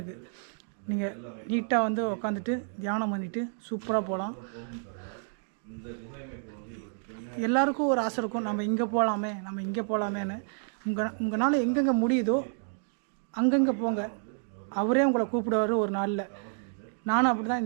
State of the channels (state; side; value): silent; left; 58 dB below the other